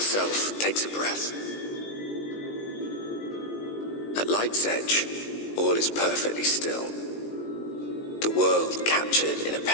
takes a breath. At light's edge, all is perfectly still. The world captured in a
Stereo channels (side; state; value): right; late; 19 ms